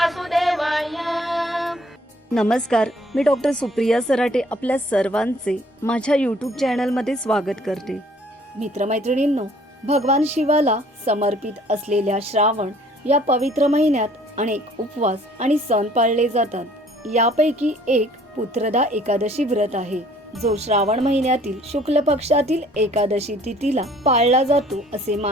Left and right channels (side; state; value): both; normal; correlation 0.57